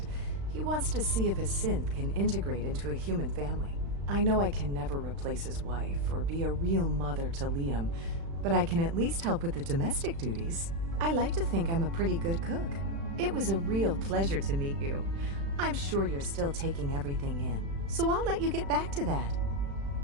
He wants to see if a synth can integrate into a human family. I know I can never replace his wife or be a real mother to Liam, but I can at least help with the domestic duties. I like to think I'm a pretty good cook. It was a real pleasure to meet you. I'm sure you're still taking everything in, so I'll let you get back to that.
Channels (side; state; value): left; late; 36 ms